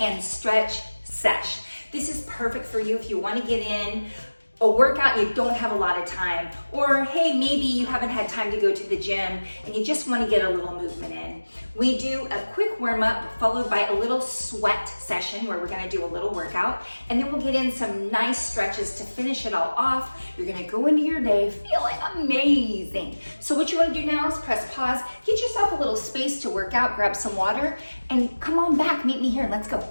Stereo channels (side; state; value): both; inverted; correlation -1.00